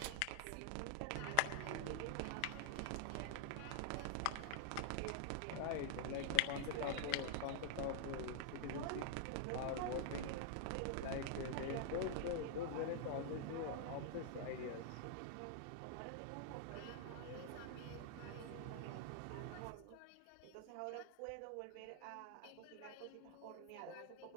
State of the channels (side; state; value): both; different; correlation -0.01